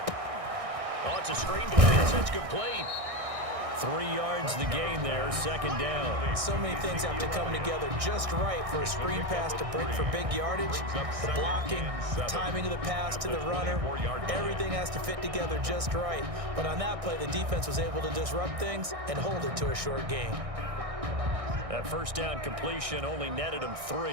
Oh, it's a screen pass. That's complete. 3 yards the gain there, second down. So many things have to come together just right for a screen pass to break for big yardage. The blocking, the timing of the pass to the runner, everything has to fit together just right. But on that play, the defense was able to disrupt things and hold it to a short gain. That first down completion only netted him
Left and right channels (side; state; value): left; late; 1.6 ms